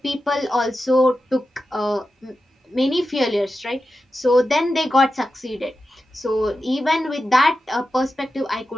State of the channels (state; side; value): normal; both; correlation 0.91